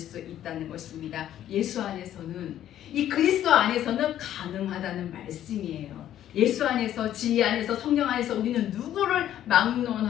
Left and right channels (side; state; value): right; quieter; 11.6 dB